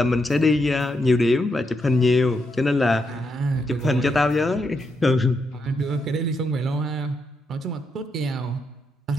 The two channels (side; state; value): both; normal; correlation 0.81